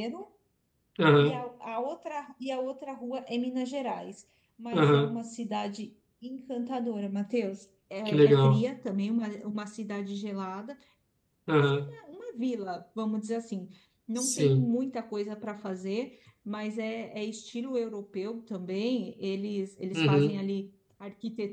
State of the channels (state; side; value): identical; both; correlation 1.00